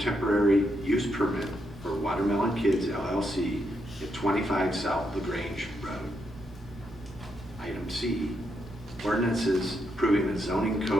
use permit for Water Lemon Kids LLC at 25 South LaGrange Road. Item C, ordinances approving a zoning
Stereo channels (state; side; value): normal; both; correlation 0.80